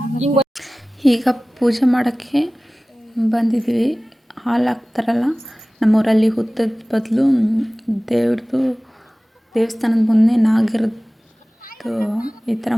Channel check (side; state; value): both; normal; correlation 0.98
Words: ಈಗ ಪೂಜೆ ಮಾಡೋಕ್ಕೆ ಬಂದಿದ್ವಿ. ಹಾಲು ಹಾಕ್ತಾರಲ್ಲ ನಮ್ಮೂರಲ್ಲಿ, ಹುತ್ತದ ಬದಲು ದೇವಸ್ಥಾನದ ಮುಂದೆ ನಾಗಿರದ್ದು ಈ ಥರ